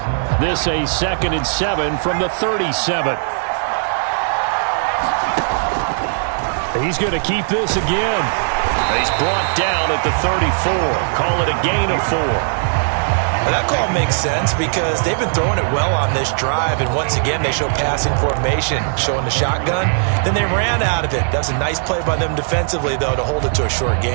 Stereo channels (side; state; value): left; silent; digital silence